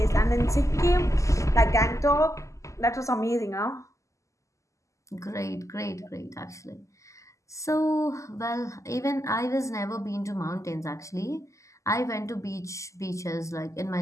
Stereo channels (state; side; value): late; right; 0.15 ms